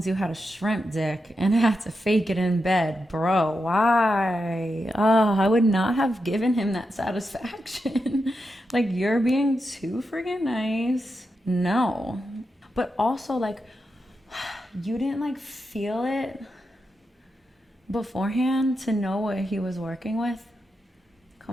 to had a shrimp dick and I had to fake it in bed. Bro, why? Oh, I would not have given him that satisfaction. You're being too friggin' nice. No. But also, you didn't feel it beforehand to know what he was working with?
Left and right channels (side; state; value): both; normal; correlation 0.87